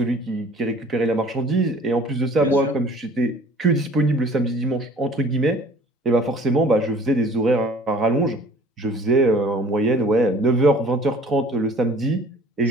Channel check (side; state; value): both; normal; correlation 0.49